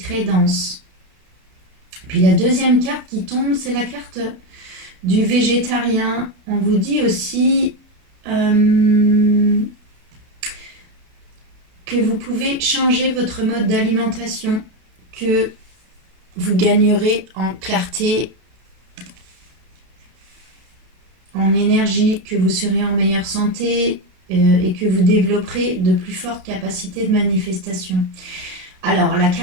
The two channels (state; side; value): late; left; 32 ms